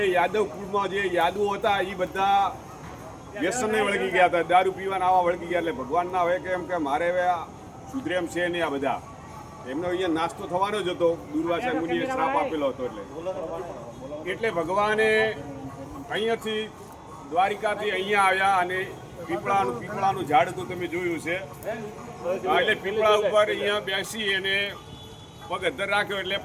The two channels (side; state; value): both; identical; correlation 1.00